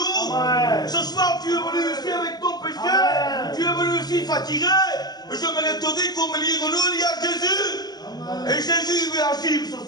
Amen. Ce soir, tu es venu ici avec ton péché. Amen. Tu es venu ici fatigué. Je me te dire qu'au milieu de nous, il y a Jésus. Amen. Et Jésus veut agir ce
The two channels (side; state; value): right; late; 0.20 ms